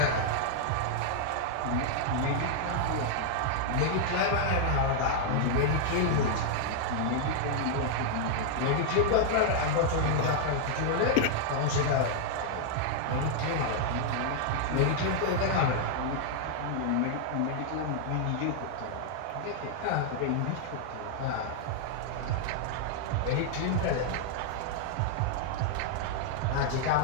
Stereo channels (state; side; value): different; both; correlation -0.01